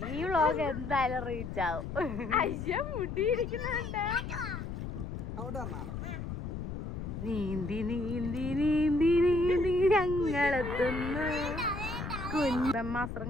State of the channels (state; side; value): noise; left; rumble, 6 dB below the sound